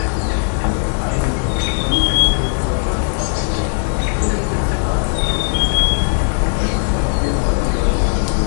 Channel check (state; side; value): silent; right; digital silence